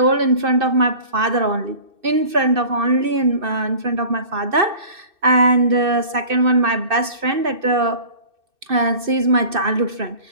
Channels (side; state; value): left; late; 2.6 ms